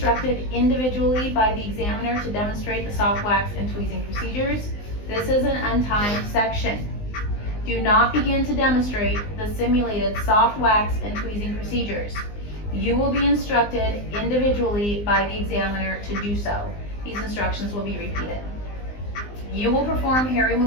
individually by the examiner to demonstrate the soft wax and tweezing procedures. This is an untimed section. Do not begin to demonstrate the simulated soft wax and tweezing procedures. You will be instructed individually by the examiner to do so. These instructions will be repeated. You will perform hair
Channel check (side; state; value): right; late; 19 ms